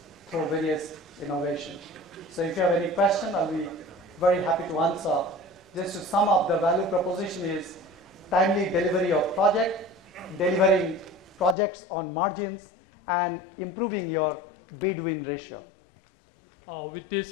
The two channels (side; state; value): right; drops out; at 11.6 s